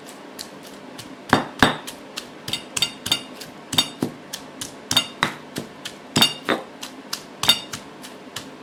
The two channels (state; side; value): identical; both; correlation 1.00